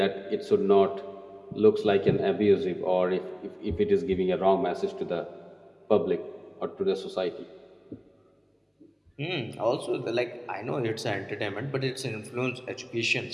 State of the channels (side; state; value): both; identical; correlation 1.00